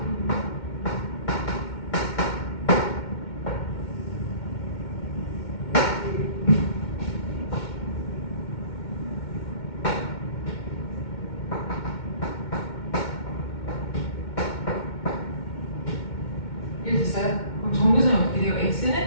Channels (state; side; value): late; right; 2.2 ms